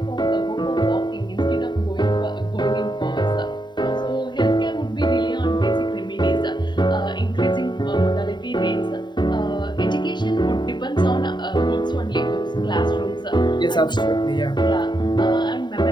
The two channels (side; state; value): right; late; 0.22 ms